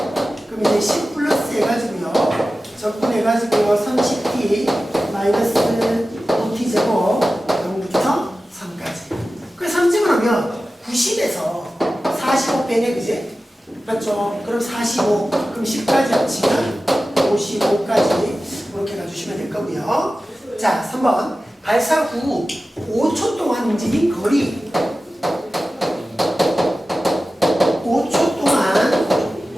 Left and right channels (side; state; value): both; normal; correlation 0.95